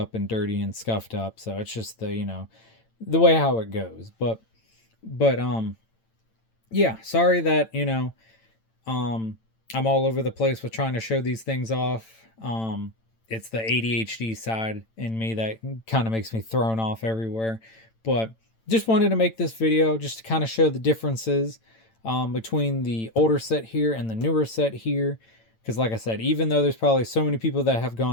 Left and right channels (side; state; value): right; late; 8.9 ms